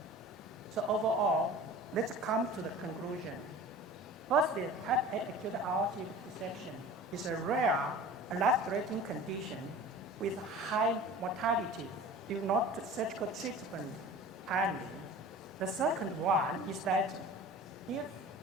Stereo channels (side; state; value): both; normal; correlation 0.40